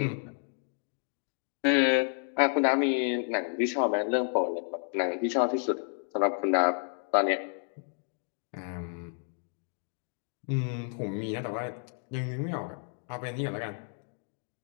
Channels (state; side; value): silent; right; 57 dB below the other